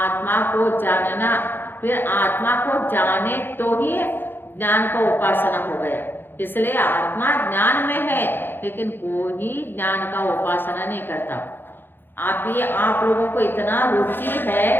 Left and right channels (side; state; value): right; late; 0.099 ms